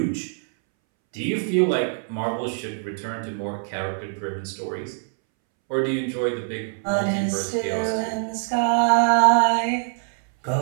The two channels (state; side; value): silent; left; 63 dB below the other